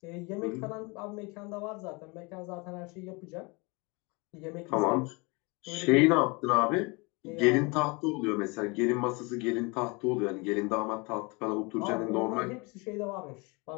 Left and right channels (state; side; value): quieter; right; 28.2 dB